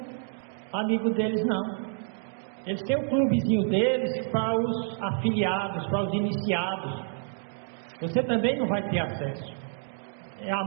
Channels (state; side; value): silent; left; 59 dB below the other